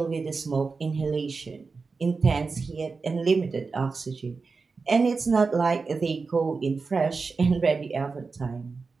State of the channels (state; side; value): quieter; left; 4.5 dB